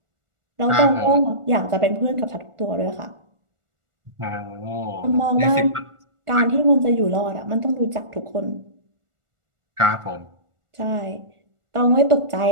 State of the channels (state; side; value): late; left; 1.4 ms